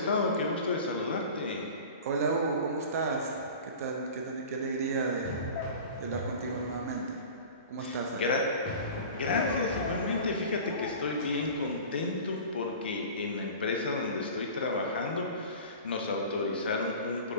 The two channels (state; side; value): inverted; both; correlation -0.38